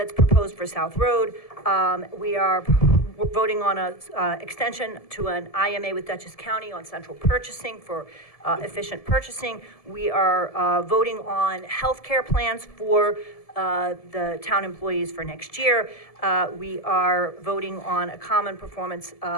proposed for South Road. We are voting on a extension to an IMA with Dutchess County on central purchasing for efficient purchasing. We are voting on healthcare plans for the town employees for next year. We are voting on a common performance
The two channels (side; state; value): right; late; 1.7 ms